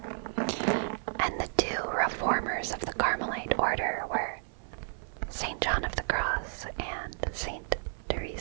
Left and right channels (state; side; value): silent; left; 55 dB below the other